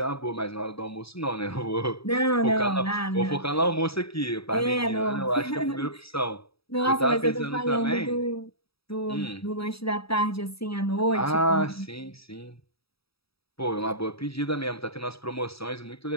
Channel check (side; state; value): right; late; 0.77 ms